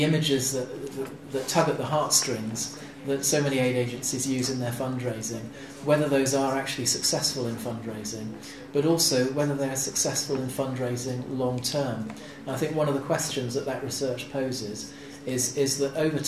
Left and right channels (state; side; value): identical; both; correlation 1.00